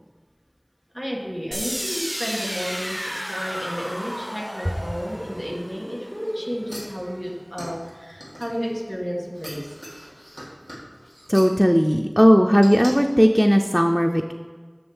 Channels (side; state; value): both; identical; correlation 1.00